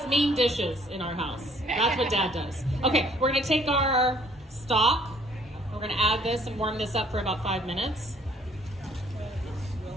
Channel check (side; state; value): both; normal; correlation 0.60